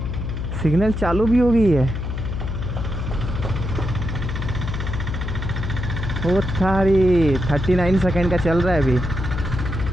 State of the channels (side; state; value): left; noise; hum, 4 dB below the sound